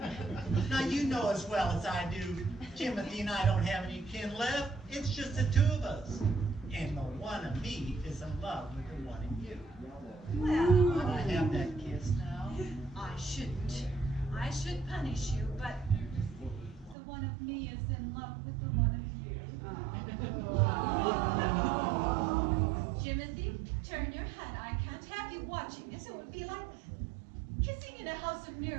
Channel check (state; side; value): drops out; left; at 16.9 s